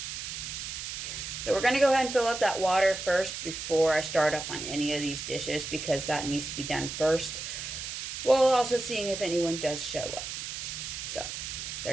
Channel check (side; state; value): right; noise; hiss, 6 dB below the sound